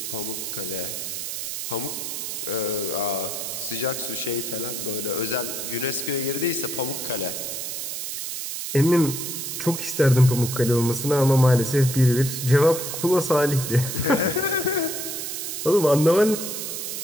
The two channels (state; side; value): noise; right; hiss, 5 dB below the sound